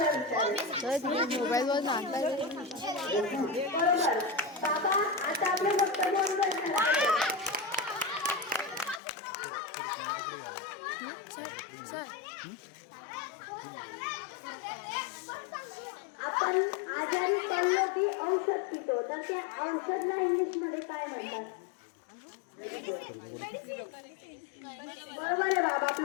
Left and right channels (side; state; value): right; drops out; at 9.0 s